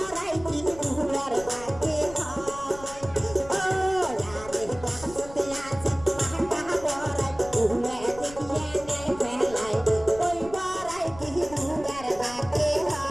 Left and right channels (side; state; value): left; noise; rumble, 17 dB below the sound